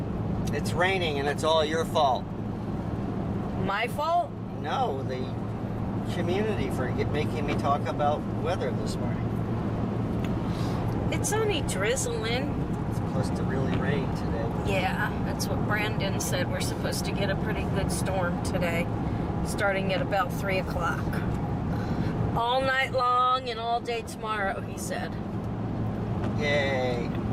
It's raining and it's all your fault. My fault? No, the community for making me talk about weather this morning. It's only drizzling. It's supposed to really rain today. Yeah, that's what Brandon said. We're supposed to get a pretty good storm today, starting at about 3 o'clock. All night long and all day tomorrow, he said. Yay.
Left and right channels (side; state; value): both; identical; correlation 1.00